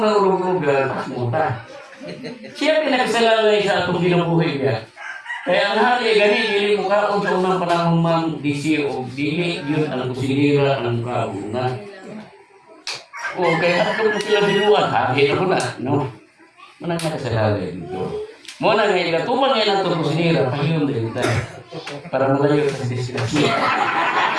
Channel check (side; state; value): both; identical; correlation 1.00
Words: na ulog-ulugan mas muta siya pinagsalalay sa atong kinabuhi niya. Kaya ang hari gani dili mo kaon sa unang panahon man disi o dili yun ang kusinira ang kauna. O kaya ato mo sila binuan hari na ko na no. Manang nakasalalay dito. Mo na nga ikatuman ngayon ang itong kusinira pahiyon din tayo para malayo sa disgrasya.